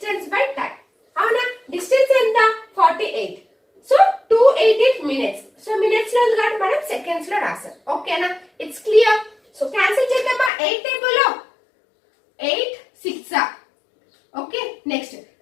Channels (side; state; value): right; drops out; at 10.5 s